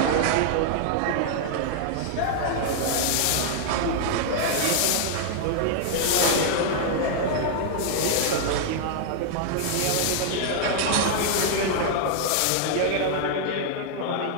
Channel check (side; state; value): both; different; correlation -0.01